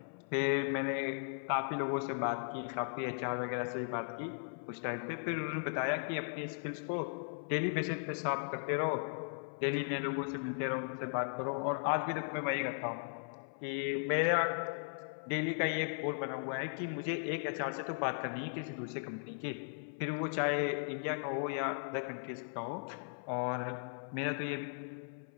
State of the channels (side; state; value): right; silent; 53 dB below the other